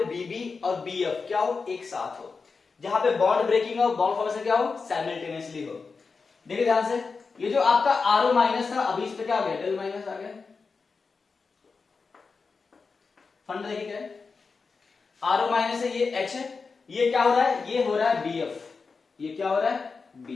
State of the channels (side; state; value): right; quieter; 4.7 dB